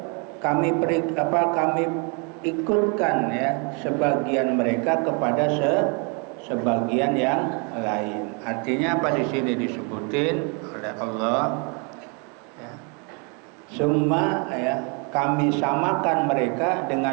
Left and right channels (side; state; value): left; quieter; 35.1 dB